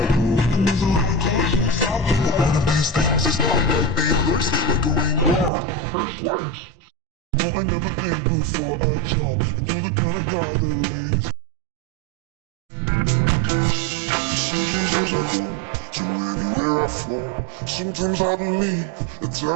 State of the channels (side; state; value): left; drops out; at 5.5 s